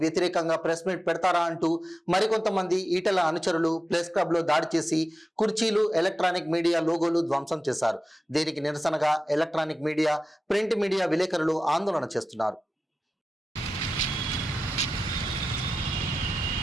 వ్యతిరేకంగా ప్రెస్ మీట్ పెడతారా అంటూ మరికొంతమంది ఈటల అనుచరులు ప్రెస్ క్లబ్ లో దాడి చేసి కుర్చీలు, ఎలక్ట్రానిక్ మీడియా లోగోలు ధ్వంసం చేశారు. దీనికి నిరసనగా ఎలక్ట్రానిక్ మీడియా, ప్రింట్ మీడియా విలేకరులు ఆందోళన చేస్తున్నారు.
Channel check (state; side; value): normal; both; correlation 0.94